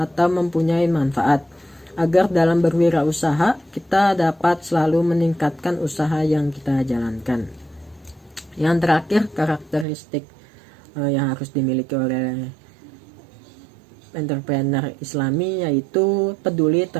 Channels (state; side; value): drops out; left; at 9.9 s